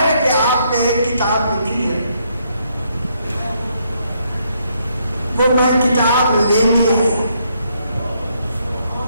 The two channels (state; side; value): inverted; both; correlation -0.73